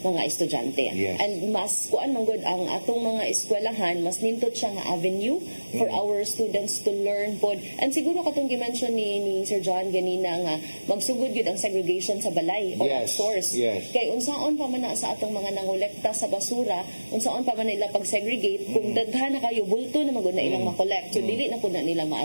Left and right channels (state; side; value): inverted; both; correlation -1.00